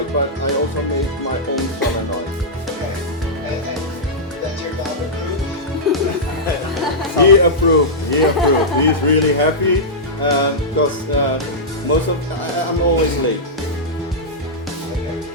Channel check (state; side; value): normal; both; correlation -0.10